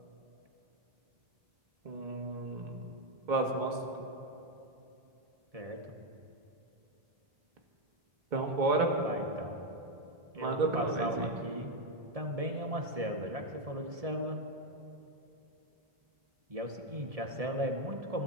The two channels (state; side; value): late; left; 1.7 ms